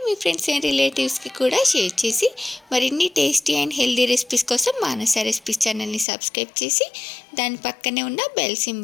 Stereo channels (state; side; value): drops out; right; at 6.1 s